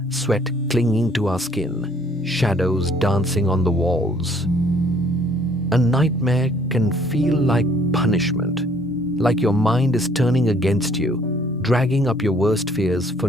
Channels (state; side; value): normal; both; correlation 0.60